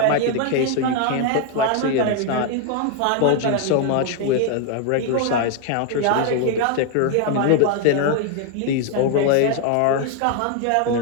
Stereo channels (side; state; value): both; different; correlation 0.00